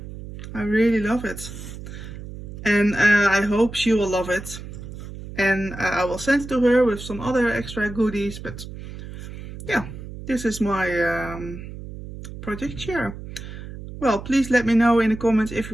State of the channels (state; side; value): noise; right; hum, 11 dB below the sound